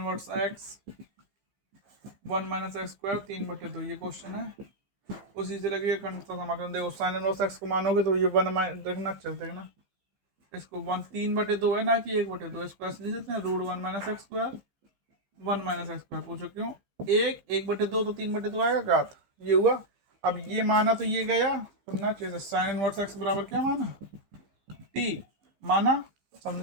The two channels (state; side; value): late; left; 15 ms